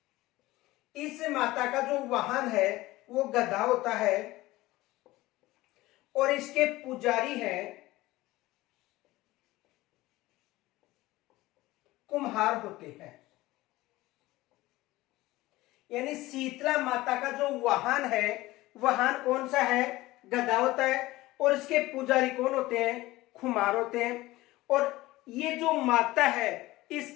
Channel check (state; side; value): quieter; right; 18.3 dB